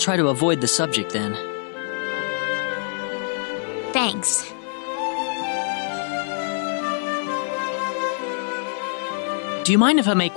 to avoid the subject then. Thanks. Do you mind if I make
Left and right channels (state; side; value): silent; right; 58 dB below the other